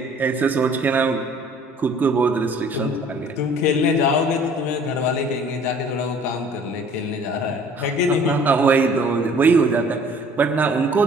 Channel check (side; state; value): both; normal; correlation 0.53